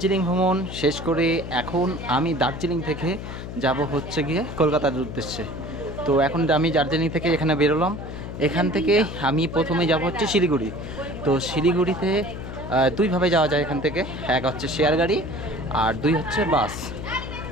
ভ্রমণ শেষ করে এখন আমি দার্জিলিং থেকে যাব হচ্ছে গিয়ে কলকাতার উদ্দেশ্যে। তো এখন আমি দার্জিলিং থেকে এখানে বেরোলাম। এখান থেকে আমি প্রথমে যাব হচ্ছে শিলিগুড়ি। তো শিলিগুড়িতে দুইভাবে যাওয়া যায় এখান থেকে, এক হচ্ছে শেয়ার গাড়ি আর দুই হচ্ছে বাস।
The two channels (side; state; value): left; noise; hum, 9 dB below the sound